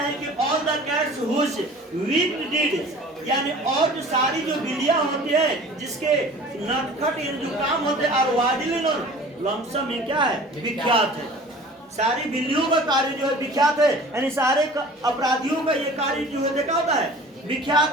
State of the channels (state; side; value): normal; both; correlation 0.44